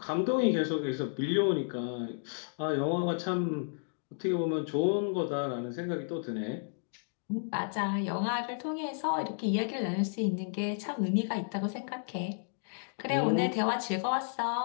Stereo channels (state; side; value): silent; right; digital silence